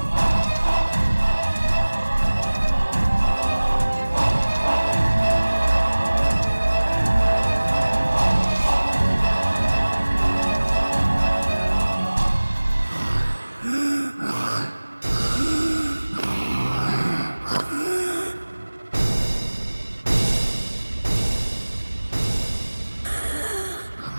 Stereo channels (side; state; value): both; inverted; correlation -1.00